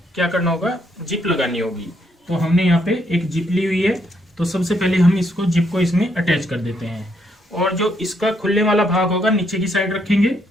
क्या करना होगा, जिप लगानी होगी। तो हमने यहाँ पे एक जिप ली हुई है, तो सबसे पहले हम इसको जिप को इसमें अटैच कर देते हैं, और जो इसका खुलने वाला भाग होगा नीचे की साइड रखेंगे,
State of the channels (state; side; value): normal; both; correlation 0.74